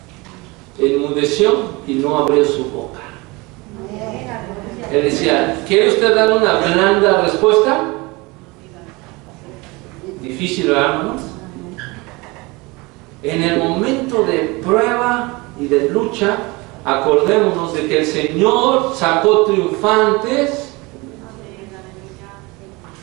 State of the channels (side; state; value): left; quieter; 24.6 dB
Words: Enmudeció y no abrió su boca. Él decía, ¿quiere usted dar una blanda respuesta? Difícil, ¿verdad, hermanos? En el momento de prueba y de lucha, acordémonos de que el Señor sacó triunfantes